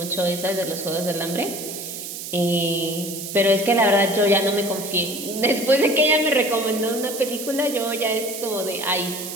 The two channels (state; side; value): noise; right; hiss, 8 dB below the sound